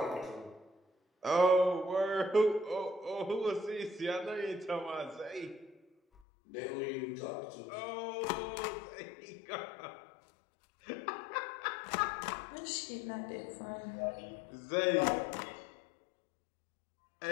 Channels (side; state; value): right; drops out; at 6.2 s